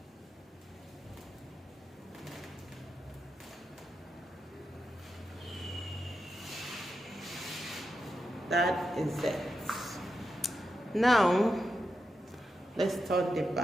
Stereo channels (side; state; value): both; normal; correlation 0.88